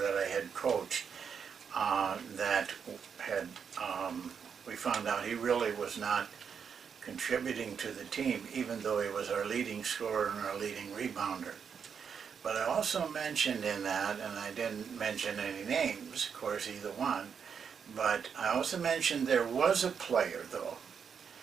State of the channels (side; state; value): left; quieter; 6.8 dB